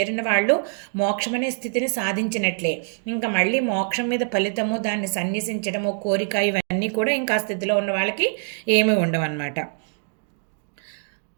వాళ్ళు మోక్షం అనే స్థితిని సాధించినట్లే. ఇంకా మళ్ళీ మోక్షం మీద ఫలితము, దాన్ని సన్యసించడము, కోరిక ఇవన్నీ కూడా ఇంకా ఆ స్థితిలో ఉన్న వాళ్ళకి ఏమీ ఉండవన్నమాట.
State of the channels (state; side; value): silent; left; 63 dB below the other